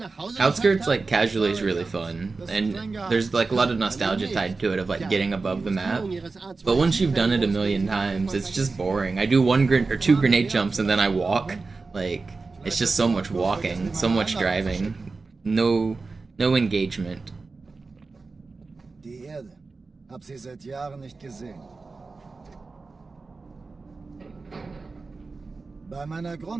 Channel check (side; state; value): left; quieter; 4.0 dB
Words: Hause Outskirts, geschafft like, haben? casually is really fun, and there's, like, a lot of nostalgia tied to it of, like, getting above the map. But once you've done it a million times, it's just boring. I do two grenade jumps and then I walk. Like, it's just so much walking, so much driving. No engagement. Die Erde. Hab sie seit Jahren nicht gesehen. Bei meiner